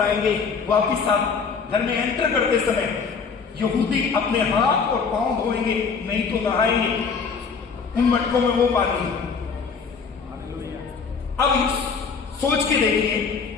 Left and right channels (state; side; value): quieter; right; 5.5 dB